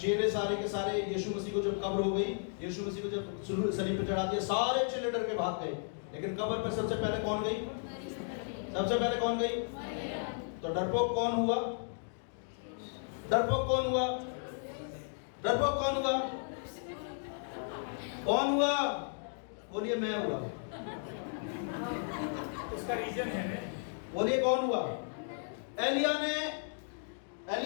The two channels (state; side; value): silent; right; digital silence